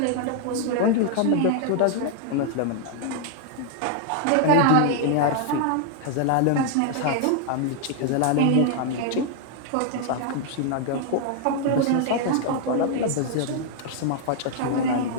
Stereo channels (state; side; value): different; both; correlation 0.00